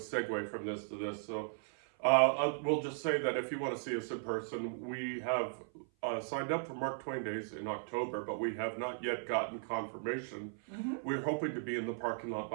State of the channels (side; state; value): left; silent; 53 dB below the other